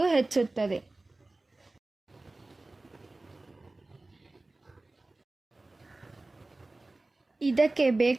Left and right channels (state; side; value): quieter; left; 3.0 dB